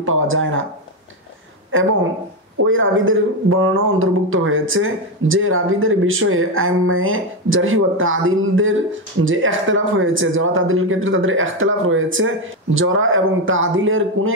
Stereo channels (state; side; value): normal; both; correlation 0.09